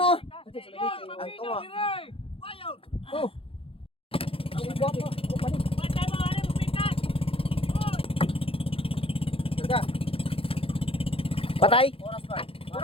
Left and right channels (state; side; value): late; right; 0.27 ms